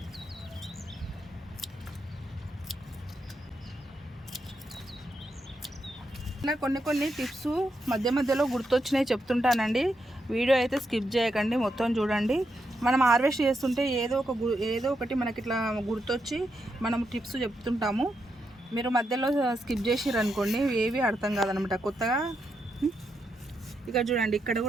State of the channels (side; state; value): both; normal; correlation 0.83